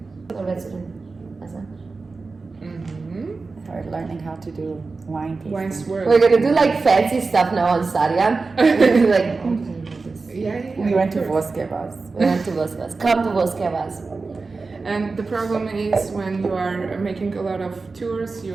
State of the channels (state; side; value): quieter; left; 4.0 dB